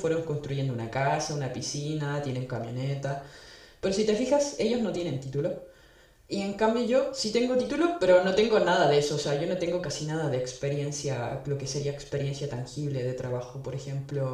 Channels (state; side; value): identical; both; correlation 1.00